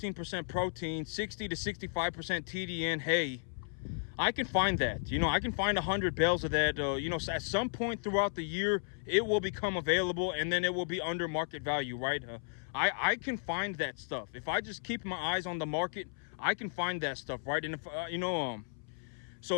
protein, 60 to 65% TDN hay. I can find that, you know, I can find 100 bales of that, you know, at some point throughout the year, it will become available and then it will be under market value, right? I can find that stuff. If I just keep my eyes on the market, I can find that stuff, right? And if, you know, so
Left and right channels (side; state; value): right; silent; 55 dB below the other